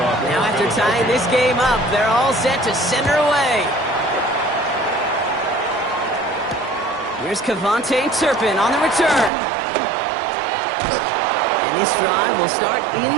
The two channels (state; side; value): drops out; left; at 9.3 s